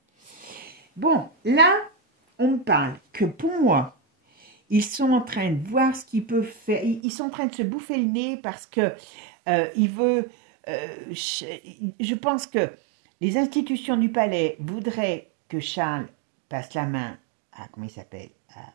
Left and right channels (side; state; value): left; drops out; at 7.0 s